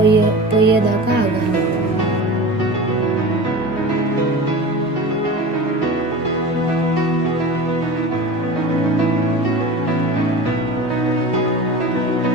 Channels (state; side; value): normal; both; correlation 0.33